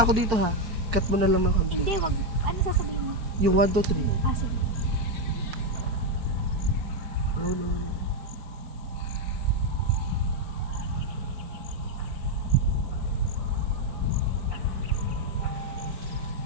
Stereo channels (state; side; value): late; left; 4.7 ms